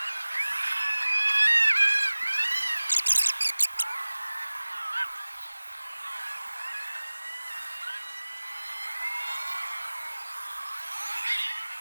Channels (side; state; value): both; inverted; correlation -1.00